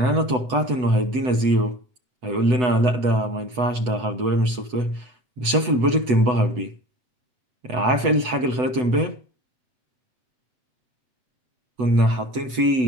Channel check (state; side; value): late; left; 8.0 ms